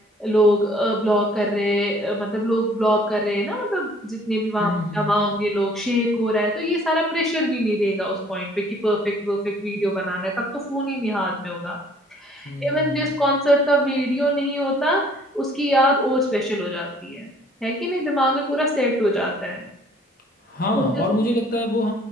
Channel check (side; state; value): both; normal; correlation 0.57